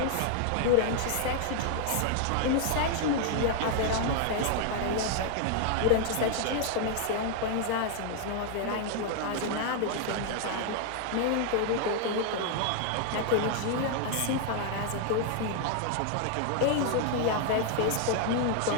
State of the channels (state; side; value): different; both; correlation 0.00